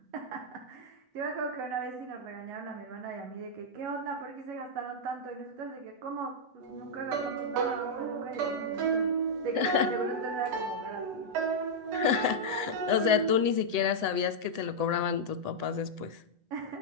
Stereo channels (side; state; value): left; late; 8.0 ms